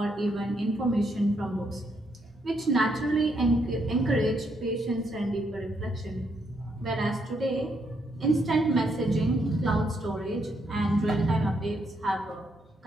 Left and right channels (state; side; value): normal; both; correlation 0.76